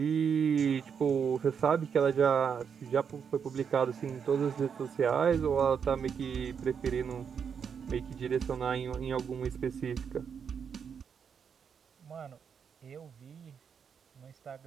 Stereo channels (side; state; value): left; quieter; 7.0 dB